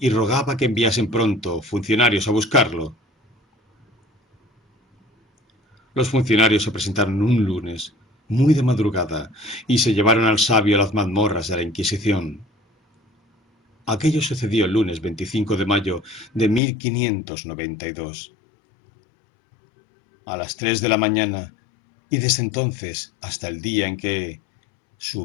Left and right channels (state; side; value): drops out; right; at 16.6 s